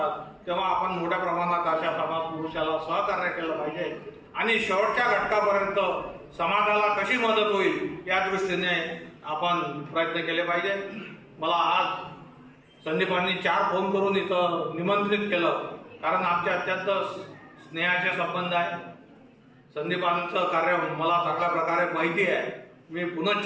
तेव्हा आपण मोठ्या प्रमाणात अशा समाज पुरुषाला सहकार्य केलं पाहिजे आणि शेवटच्या घटकापर्यंत समाजाला कशी मदत होईल या दृष्टीने आपण प्रयत्न केले पाहिजे. मला आज संदीपांनी 4 फोन करून इथं निमंत्रित केलं, कारण आमचे अत्यंत स्नेहाचे संबंध आहे. संदीपांचं कार्य मला चांगल्या प्रकारे माहिती आहे. मी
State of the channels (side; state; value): both; identical; correlation 1.00